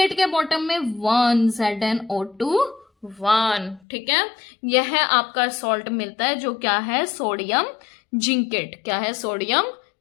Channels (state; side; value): drops out; right; at 3.8 s